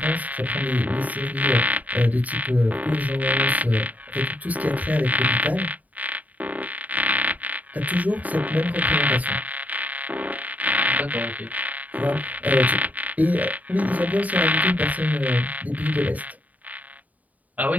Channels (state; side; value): late; left; 0.074 ms